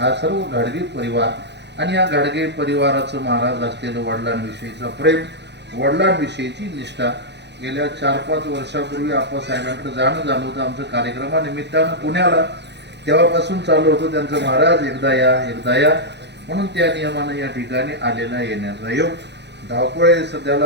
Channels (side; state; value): left; late; 0.50 ms